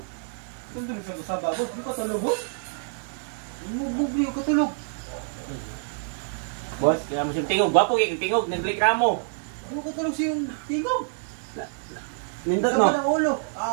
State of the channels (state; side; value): silent; left; digital silence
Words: Saan sa kasaba mo? Ano ka tulog mo? Bubli yung katulog. Boss, kaya mo siyang tingog. Gwapo kaya tingog. Nag-reklamo. Ano ka tulog siyang tingog? Nindot Sama no? ng ulo.